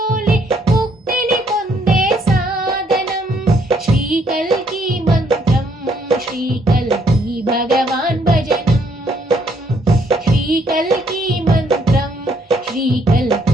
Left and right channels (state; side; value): normal; both; correlation 0.69